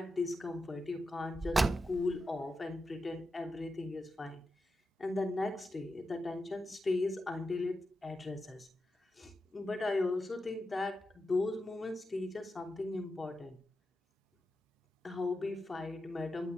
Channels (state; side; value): normal; both; correlation 0.89